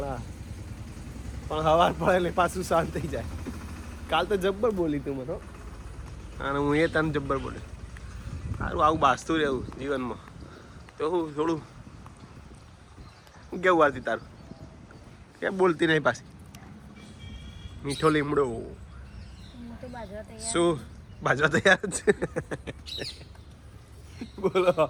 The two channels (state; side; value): identical; both; correlation 1.00